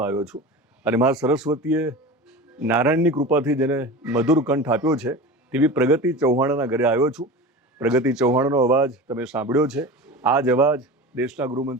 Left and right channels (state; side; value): normal; both; correlation 0.32